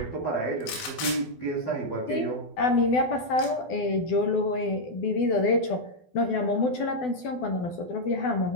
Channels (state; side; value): late; right; 12 ms